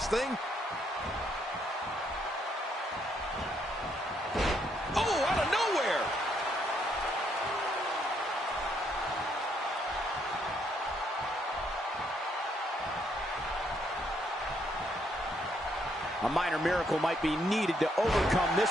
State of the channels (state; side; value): normal; both; correlation 0.72